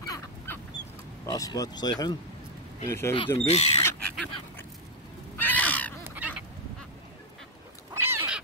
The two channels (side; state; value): both; normal; correlation 0.00